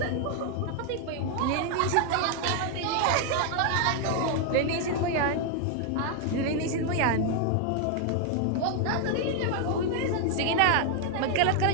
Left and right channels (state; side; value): different; both; correlation 0.00